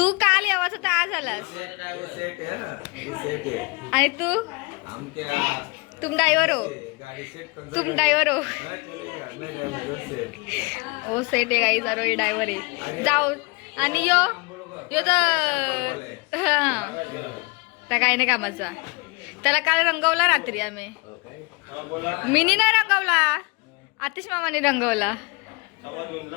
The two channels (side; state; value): right; quieter; 28.6 dB